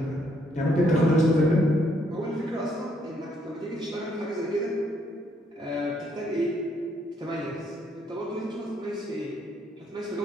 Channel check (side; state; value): both; normal; correlation 0.71